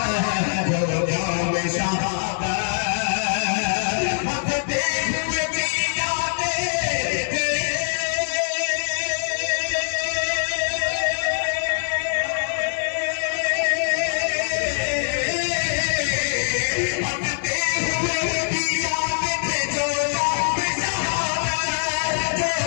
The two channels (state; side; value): silent; right; digital silence